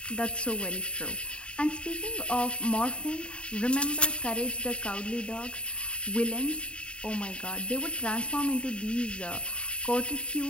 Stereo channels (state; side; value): late; right; 0.056 ms